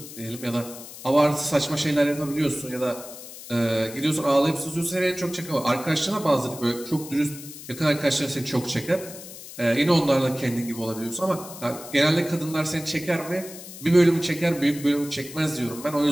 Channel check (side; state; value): left; noise; hiss, 14 dB below the sound